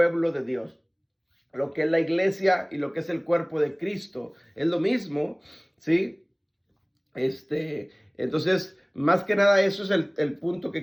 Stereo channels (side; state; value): both; identical; correlation 1.00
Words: de Dios. Lo que es la iglesia y lo que es el cuerpo de Cristo es lo mismo, ¿sí? Entonces, más que nada, eso es el punto